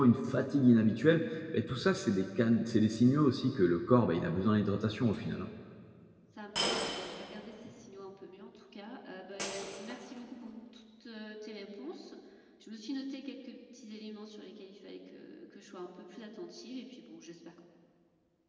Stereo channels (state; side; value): identical; both; correlation 1.00